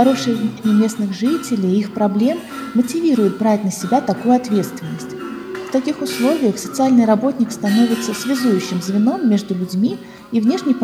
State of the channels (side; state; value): both; identical; correlation 1.00